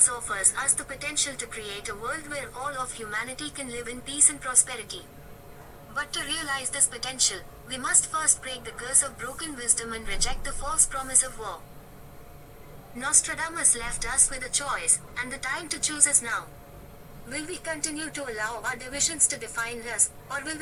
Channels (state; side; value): identical; both; correlation 1.00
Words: offers us the potential to create a world where all of humanity can live in peace and prosperity. But to realize this potential, we must first break the curse of broken wisdom and reject the false promise of war. Nostradamus left us with a choice, and the time to choose is now. Will we continue to allow our divisions to define us, or will